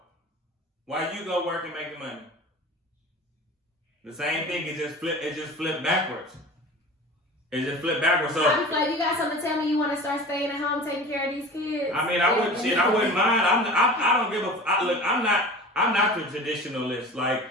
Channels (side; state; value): both; normal; correlation 0.37